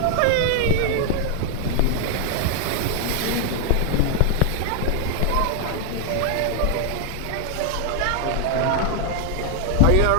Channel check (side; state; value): both; different; correlation 0.00